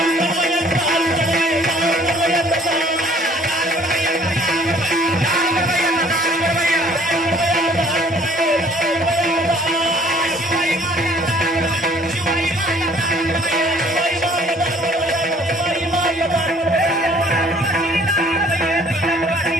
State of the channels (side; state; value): both; normal; correlation 0.57